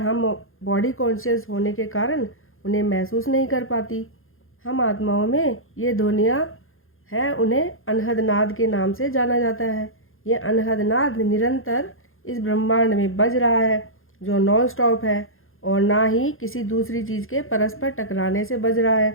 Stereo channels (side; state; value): right; late; 0.60 ms